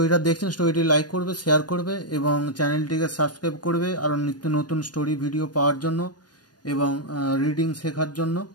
দেখছেন, স্টোরিটি লাইক করবে, শেয়ার করবে এবং চ্যানেলটিকে সাবস্ক্রাইব করবে আরও নিত্য নতুন স্টোরি ভিডিও পাওয়ার জন্য এবং রিডিং শেখার জন্য।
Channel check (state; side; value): late; right; 0.69 ms